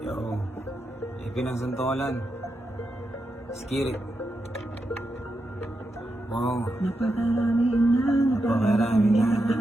ipinagsantolan. Skirit. Wow. Napakarami na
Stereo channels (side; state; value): both; normal; correlation 0.86